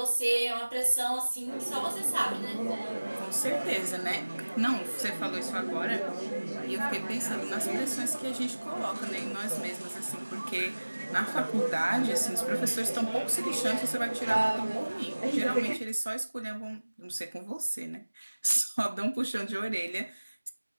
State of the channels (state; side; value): inverted; both; correlation -1.00